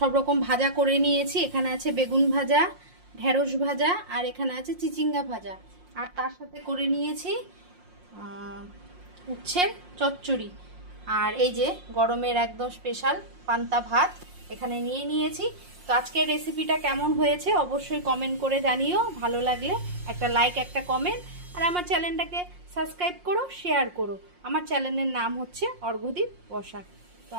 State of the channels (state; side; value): late; left; 5.6 ms